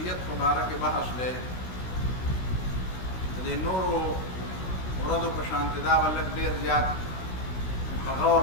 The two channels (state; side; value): late; right; 16 ms